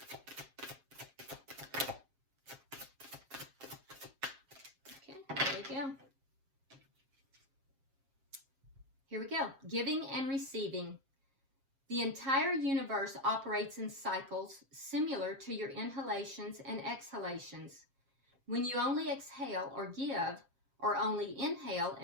Okay, there we go. Here we go. Giving and receiving. The entire universe operates in cycles similar to your inhalations and exhalations. When you only exhale or give, or only inhale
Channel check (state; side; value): late; left; 7.4 ms